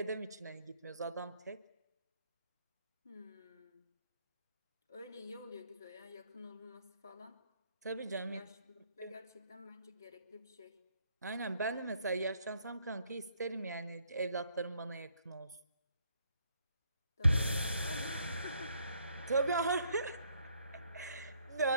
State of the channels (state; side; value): inverted; both; correlation -0.69